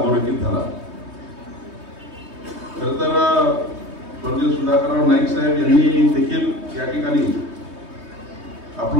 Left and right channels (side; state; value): left; late; 3.2 ms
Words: झाला। खरं तर स्वर्गीय सुधाकरराव नाईक साहेब यांनी देखील या ठिकाणी